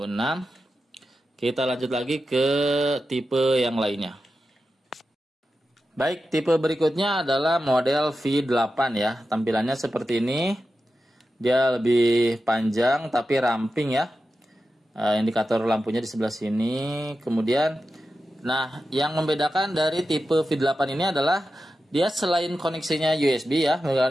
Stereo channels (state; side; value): normal; both; correlation 0.91